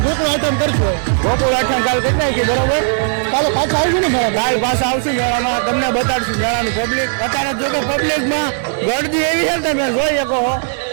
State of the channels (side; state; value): left; silent; digital silence